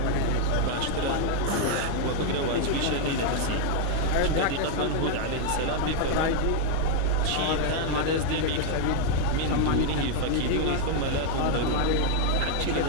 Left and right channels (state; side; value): different; both; correlation 0.00